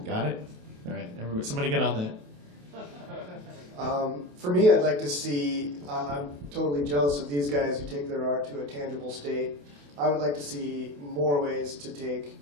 Got it? All right, everybody, somebody get on that. For me, I'd like to see, I'm totally jealous of these guys who take their art to a tangible state. I would like to see more ways to take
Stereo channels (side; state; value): left; late; 28 ms